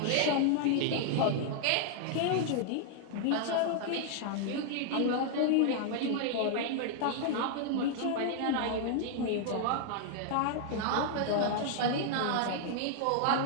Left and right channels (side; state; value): both; different; correlation -0.01